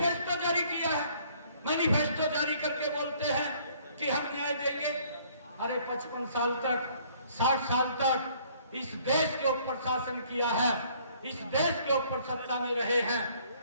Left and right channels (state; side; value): inverted; both; correlation -0.60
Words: जारी किया है। मैनिफेस्टो जारी करके बोलते हैं कि हम न्याय देंगे। अरे 55 साल तक 60 साल तक इस देश के ऊपर शासन किया है, इस देश के ऊपर सत्ता में रहे हैं,